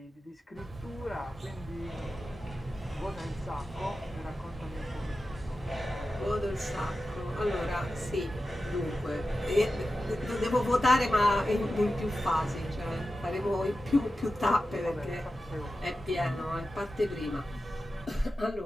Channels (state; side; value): normal; both; correlation 0.92